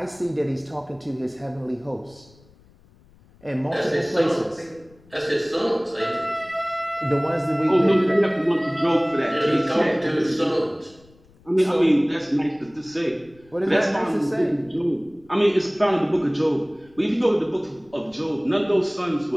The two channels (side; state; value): left; noise; rumble, 28 dB below the sound